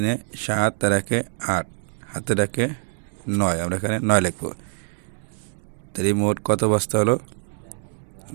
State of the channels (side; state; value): left; silent; digital silence